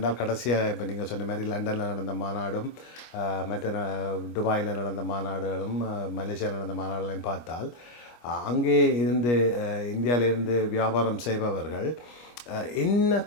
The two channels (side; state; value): right; late; 25 ms